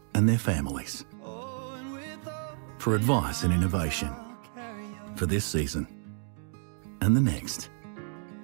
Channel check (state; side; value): silent; left; 58 dB below the other